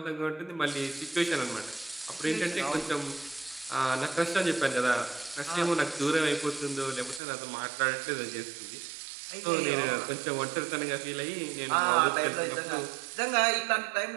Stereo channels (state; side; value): drops out; left; at 7.2 s